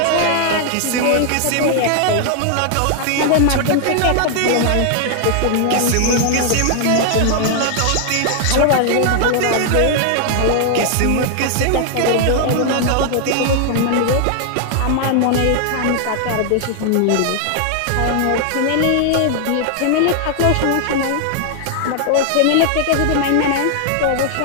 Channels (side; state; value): both; different; correlation 0.00